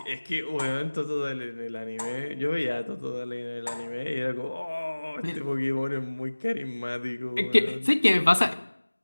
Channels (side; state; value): both; inverted; correlation -1.00